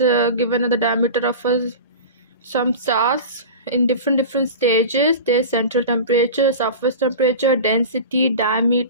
given at the diameter of some stars in different stages, their central temperature, surface temperature, density,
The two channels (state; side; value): inverted; both; correlation -0.32